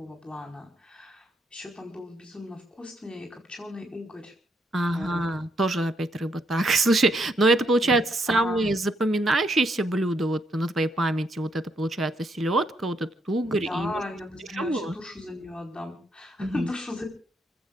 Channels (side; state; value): both; normal; correlation 0.75